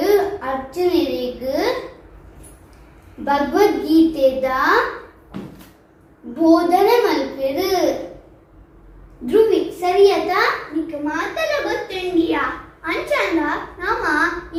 ಅರ್ಜುನರಿಗೆ ಭಗವದ್ಗೀತೆದ ಬೋಧನೆ ಮಲ್ಪೆರು ಧ್ರುವಿ ಸರಿಯತಾ ನಿಕ್ ಮಾತಲ ಗೊತ್ತುಂಡಿಯಾ ಅಂಚಂದ ನಮ್ಮ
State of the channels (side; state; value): both; identical; correlation 1.00